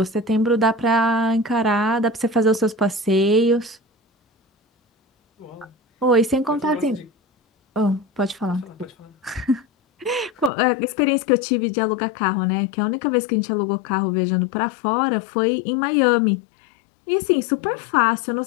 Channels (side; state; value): right; drops out; at 10.5 s